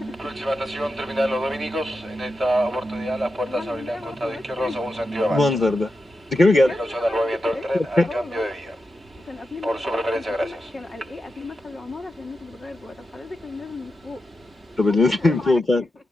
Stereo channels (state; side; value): normal; both; correlation 0.89